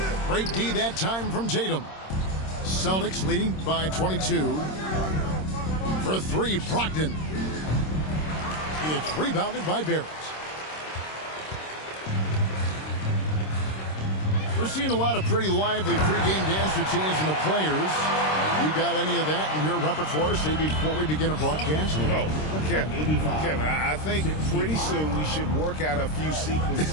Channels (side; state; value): right; late; 26 ms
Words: Great D that time from Tatum. Celtics leading by 22. For 3, Brogdon. It's rebounded by Barrett. We're seeing a lot of pretty lively pregame dance routines from the players. You got any of that in your repertoire, say, before we begin a broadcast? No, Kevin, I think pretty soon we should work out a few